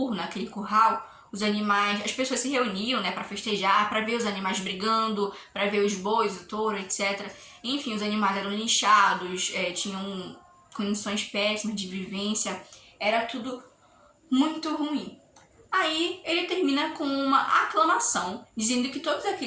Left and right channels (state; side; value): identical; both; correlation 1.00